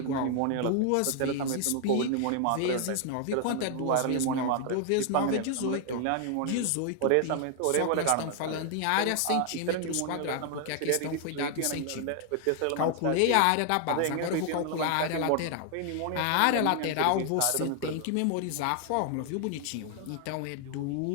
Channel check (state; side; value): different; both; correlation 0.00